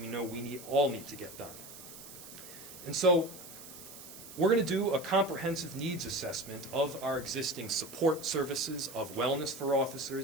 know we all need to get done. And so we're going to do a comprehensive needs assessment of our existing support services, of wellness for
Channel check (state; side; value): noise; right; hiss, 15 dB below the sound